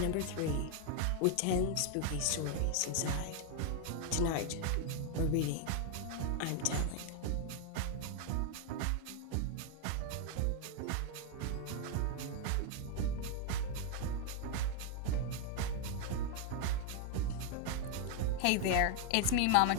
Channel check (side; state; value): both; different; correlation 0.00